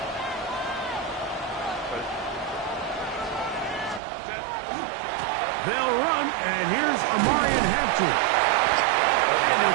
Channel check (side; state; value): left; drops out; at 4.0 s